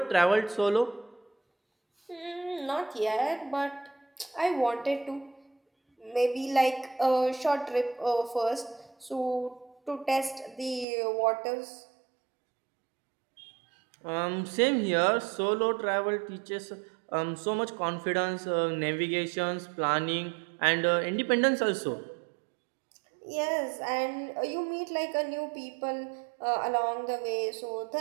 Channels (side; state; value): left; drops out; at 10.9 s